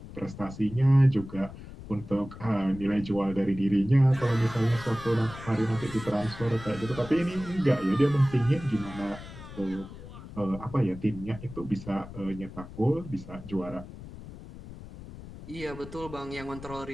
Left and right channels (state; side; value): noise; left; rumble, 14 dB below the sound